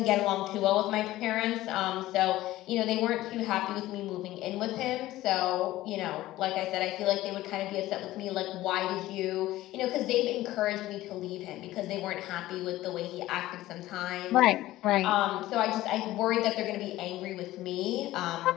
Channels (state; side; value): quieter; right; 16.1 dB